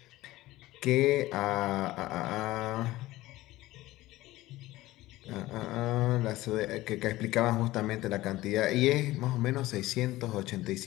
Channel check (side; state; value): right; quieter; 17.4 dB